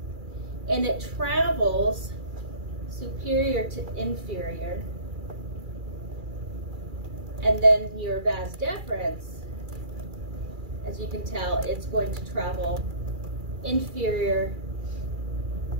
and it travels superior to inferior. And then your vas deferens, as you can tell, it's going to travel inferior,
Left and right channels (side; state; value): left; late; 2.3 ms